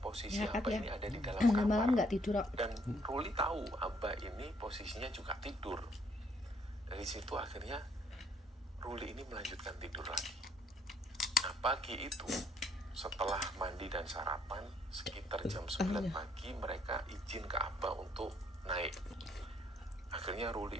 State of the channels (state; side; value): normal; both; correlation 0.66